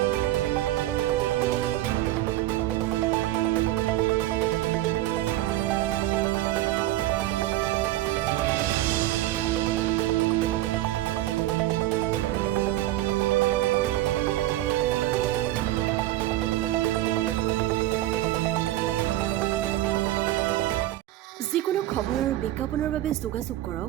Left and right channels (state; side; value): quieter; left; 15.4 dB